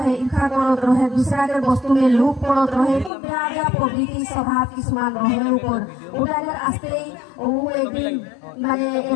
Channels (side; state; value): right; drops out; at 3.1 s